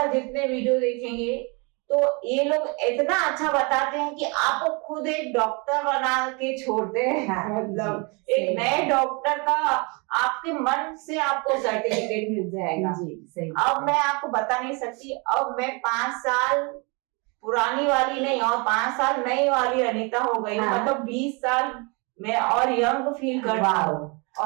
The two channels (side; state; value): left; quieter; 30.6 dB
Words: जितने वीडियो देखेंगे तो ये लोग इतना अच्छा बताते हैं कि आपको खुद एक डॉक्टर बना के छोड़ते हैं। मतलब एक नए डॉक्टर का आपके मन से आपको सर्टिफिकेट मिल जाएगा। अब मैं आपको बता नहीं सकती, अब मैं 5 साल पुरानी वाली नहीं और 5 साल नई वाली अनीता हो गई। मतलब 20 साल मैं और यंग फील कर रहा हूँ।